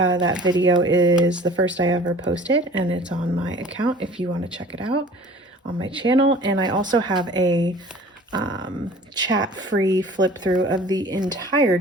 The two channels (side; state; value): both; normal; correlation 0.46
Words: video is the first I ever posted, and it's on my account if you want to check it out on my channel. And I also have a chat-free flip through of the entire